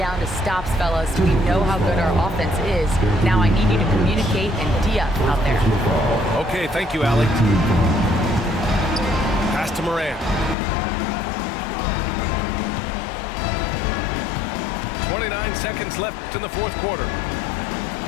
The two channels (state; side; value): drops out; right; at 10.6 s